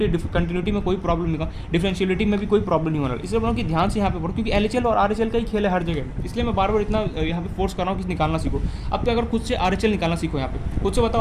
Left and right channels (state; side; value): identical; both; correlation 1.00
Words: में कोई प्रॉब्लम नहीं होगा, डिफरेंशियलिटी में भी कोई प्रॉब्लम नहीं होना। इसलिए बोल रहा हूँ कि ध्यान से यहाँ पे पढ़ो, क्योंकि LHL और RHL का ही खेल है हर जगह, इसलिए मैं बार बार इतना यहाँ पे फोर्स कर रहा हूँ कि निकालना सीखो। अब तो अगर खुद से RHL निकालना सीखो, यहाँ पे खुद से